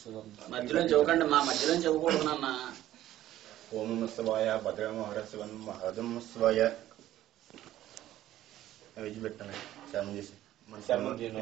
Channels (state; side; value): quieter; left; 13.6 dB